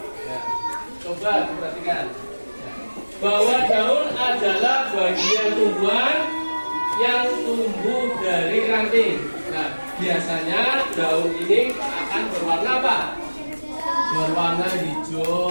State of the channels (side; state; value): both; inverted; correlation -1.00